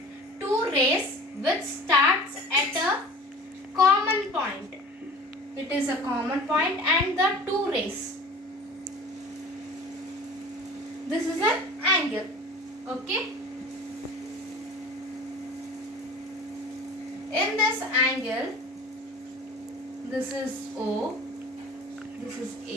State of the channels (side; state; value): both; normal; correlation 0.41